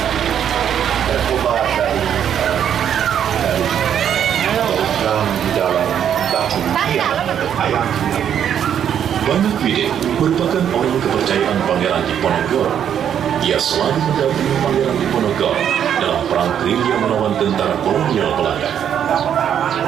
Banyak Widin merupakan orang kepercayaan Pangeran Diponegoro. Ia selalu mendampingi Pangeran Diponegoro dalam perang gerilya melawan tentara kolonial Belanda.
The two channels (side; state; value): left; quieter; 9.1 dB